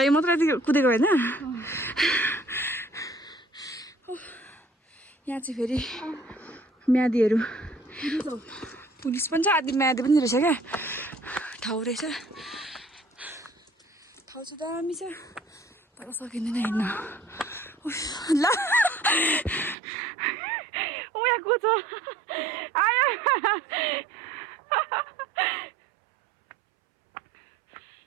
मात्र कुदेको होइन यहाँ चाहिँ फेरि म्यादीहरू पुलिस पनि छ आदि म्यादी पनि रहेछ क्या ठाउँ रहेछ ठाउँ चाहिँ दामी छ तर सकिँदैन हिँड्न ल यहाँ कुछ आयो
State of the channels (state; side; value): drops out; left; at 19.8 s